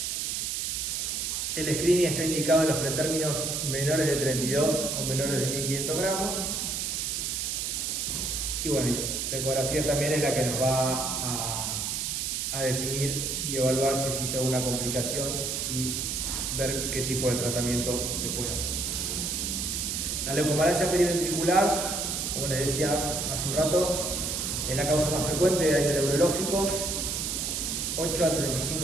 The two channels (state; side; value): noise; right; hiss, 1 dB below the sound